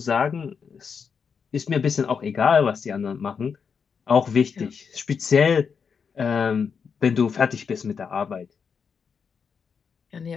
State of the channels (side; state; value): right; quieter; 6.2 dB